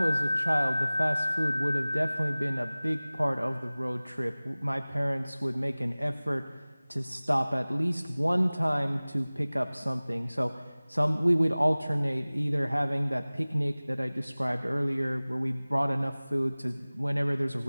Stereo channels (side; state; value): both; inverted; correlation -0.99